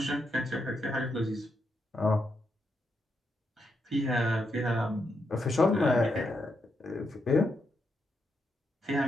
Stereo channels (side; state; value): both; normal; correlation 0.82